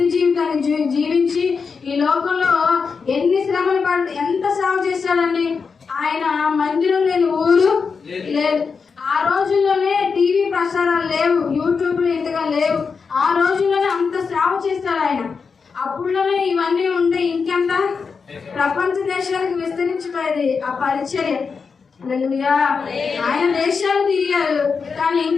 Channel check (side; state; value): right; quieter; 5.3 dB